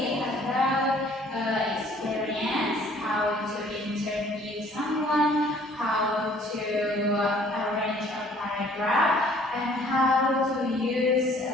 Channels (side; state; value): both; normal; correlation 0.56